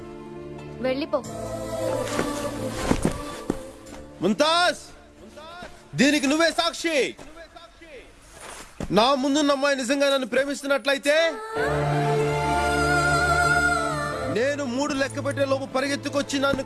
వెళ్ళిపో. ముంతాజ్, దీనికి నువ్వే సాక్షి. నా ముందున్న అమ్మాయి నిజంగా నన్ను ప్రేమిస్తున్నట్లయితే నేను 3 లెక్క పెట్టే లోపు పరిగెత్తుకొచ్చి నన్ను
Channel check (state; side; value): identical; both; correlation 1.00